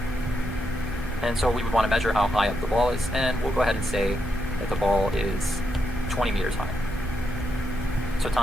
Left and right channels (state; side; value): normal; both; correlation 0.82